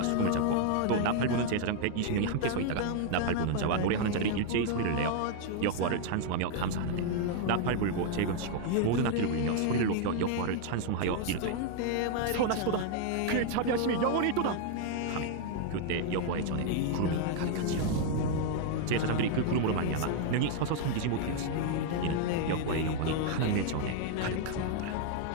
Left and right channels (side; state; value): both; different; correlation 0.00